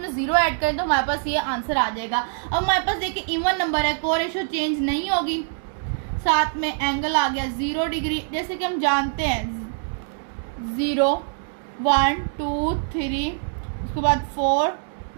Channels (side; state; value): left; silent; digital silence